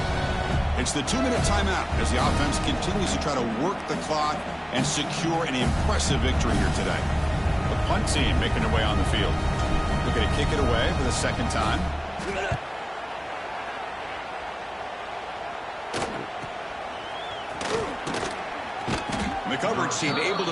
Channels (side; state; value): both; identical; correlation 1.00